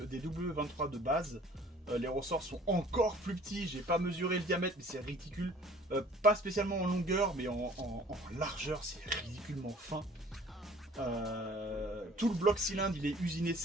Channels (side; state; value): both; normal; correlation 0.52